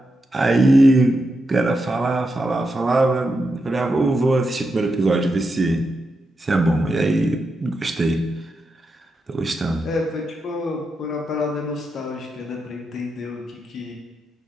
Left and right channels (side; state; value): both; normal; correlation 0.86